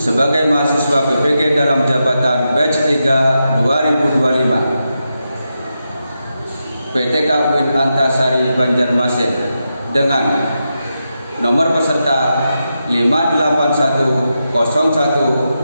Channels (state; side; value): inverted; both; correlation -0.87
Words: mahasiswa PPG dalam jabatan batch 3 2025. PTK UIN Antasari Banjarmasin dengan nomor peserta